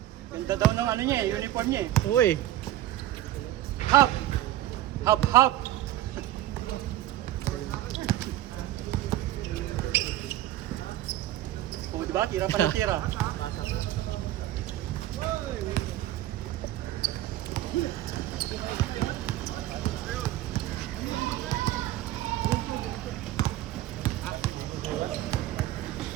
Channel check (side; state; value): left; quieter; 14.1 dB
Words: Ganda daw ng ano niya eh, uniform niya eh. Uy. Hop! Hop, hop! Oh, diba? Tira pa ng tira.